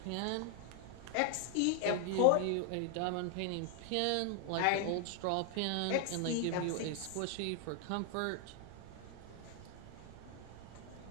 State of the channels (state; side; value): different; both; correlation 0.00